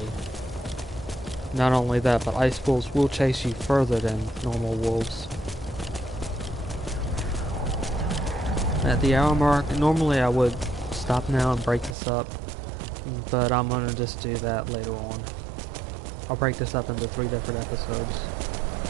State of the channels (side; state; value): left; drops out; at 12.0 s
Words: Not only that, but ice wolves will chase you further than normal wolves. At the hour mark, normally I would stop now and break this up, but I'm going to just do that later on. I'll break this up into 3 different episodes